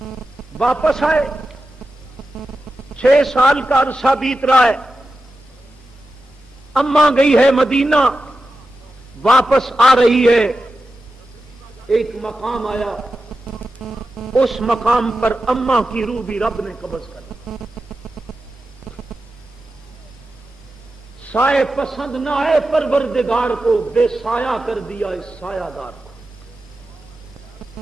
واپس آئے، 6 سال کا عرصہ بیت رہا ہے، اماں گئی ہے مدینہ، واپس آ رہی ہے، ایک مقام آیا، اس مقام پر اماں کی روح بھی رب نے قبض کر لی۔ سائے پسند نہ آئے پروردگار کو، بے سایہ کر دیا اس سایہ دار کو۔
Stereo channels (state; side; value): normal; both; correlation 0.91